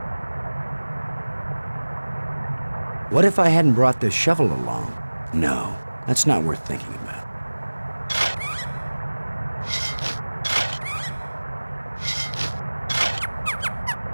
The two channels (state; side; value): inverted; both; correlation -1.00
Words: What if I hadn't brought this shovel along? No, that's not worth thinking about.